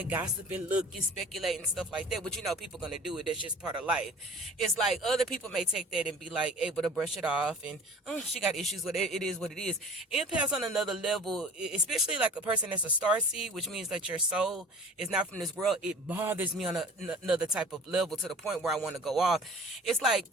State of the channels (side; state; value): both; normal; correlation 0.45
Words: gossip and look and speculate and stuff like that. But people gonna do it. That's just part of life. It's like other people may take that and be like able to brush it off, and oh, she got issues with it. It is what it is. Empaths on another level, especially like a person that's a star seed, which means that your soul is not from this world. It bothers me on another type of level to the point where I want to go off. It's like